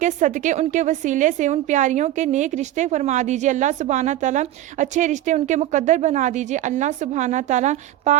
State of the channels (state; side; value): quieter; left; 13.7 dB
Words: صدقے ان کے وسیلے سے ان پیاریوں کے نیک رشتے فرما دیجیے، اللہ سبحانہ تعالیٰ اچھے رشتے ان کے مقدر بنا دیجیے، اللہ سبحانہ تعالیٰ